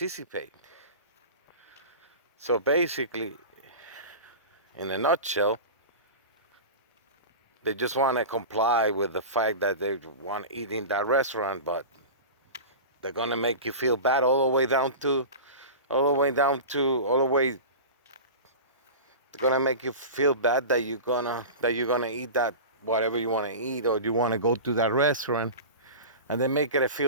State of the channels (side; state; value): both; inverted; correlation -0.30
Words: So basically, in a nutshell, they just want to comply with the fact that they want to eat in that restaurant, but they're gonna make you feel bad all the way down to, They're gonna make you feel bad that you're gonna eat that whatever you want to eat, or you want to go to that restaurant, and they make it